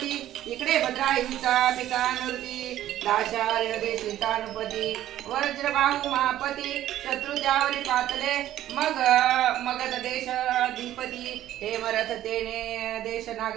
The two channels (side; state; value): left; quieter; 12.9 dB